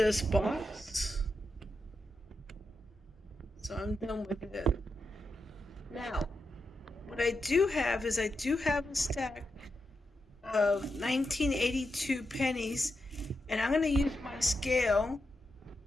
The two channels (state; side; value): normal; both; correlation 0.86